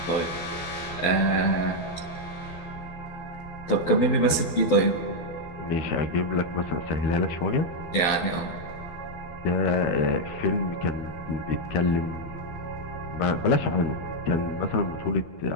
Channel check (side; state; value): right; late; 12 ms